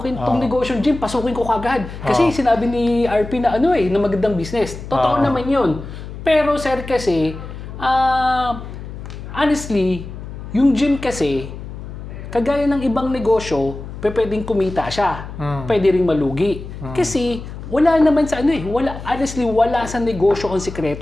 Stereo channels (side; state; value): left; noise; hum, 11 dB below the sound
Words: negosyo gym, pasukin ko kagad. Kasi sinabi ni RP na na magandang business. Totoo naman yun. Pero, sir, kasi, honestly, yung gym kasi, kagaya ng ibang negosyo, pwedeng kumita siya. Pwede ring malugi. Kasi, wala naman sa honestly, wala sa negosyo ang